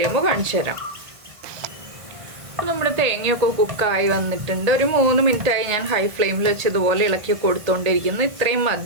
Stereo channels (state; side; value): late; left; 1.6 ms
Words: കാണിച്ചു തരാം. നമ്മുടെ തേങ്ങയൊക്കെ കുക്കായി വന്നിട്ടുണ്ട്. ഒരു 3 മിനിറ്റായി ഞാൻ ഹൈ ഫ്ലെയിമിൽ വെച്ച് ഇതുപോലെ ഇളക്കി കൊടുത്തുകൊണ്ടിരിക്കുന്നു. ഇത്രയും